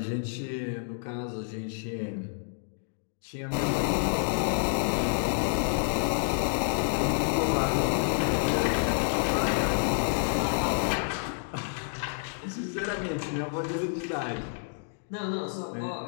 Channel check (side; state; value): right; silent; digital silence